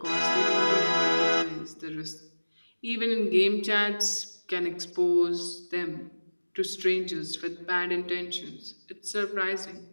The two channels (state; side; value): inverted; both; correlation -1.00